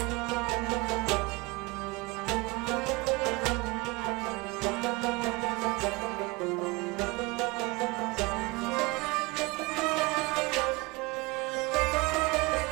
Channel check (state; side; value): quieter; left; 25.0 dB